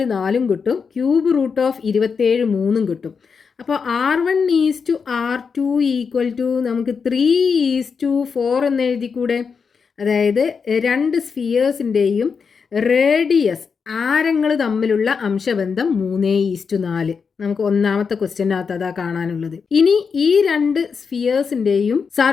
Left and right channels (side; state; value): right; quieter; 5.7 dB